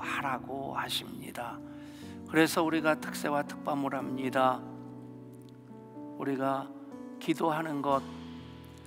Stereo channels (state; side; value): identical; both; correlation 1.00